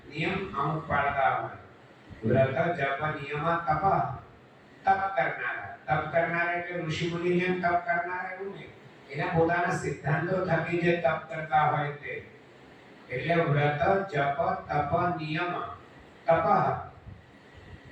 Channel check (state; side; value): identical; both; correlation 1.00